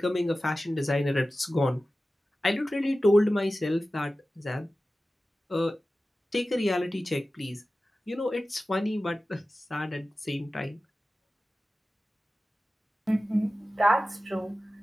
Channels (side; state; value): both; normal; correlation 0.95